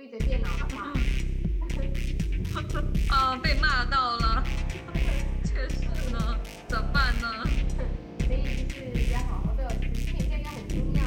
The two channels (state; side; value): identical; both; correlation 1.00